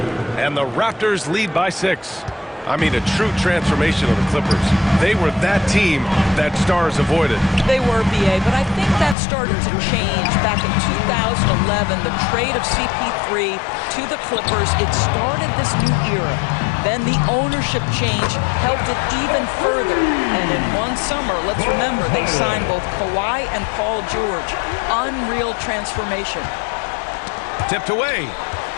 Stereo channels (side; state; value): right; drops out; at 9.2 s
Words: And the Raptors lead by 6. I mean, a true transformation of the Clippers. They were that team that stars avoided. They were, B.A., but I think that started to change back in 2011. The trade of CP3 to the Clippers, it started this new era. Then the ownership change helped it even further. And in one summer, let's remember, they signed both Kawhi and Paul George. Unreal transformation. Tipped away.